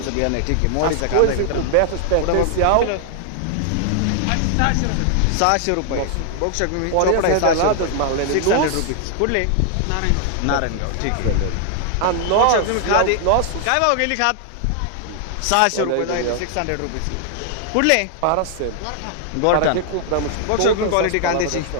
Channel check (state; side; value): different; both; correlation 0.00